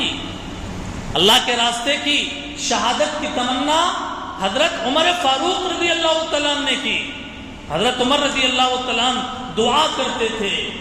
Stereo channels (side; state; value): both; identical; correlation 1.00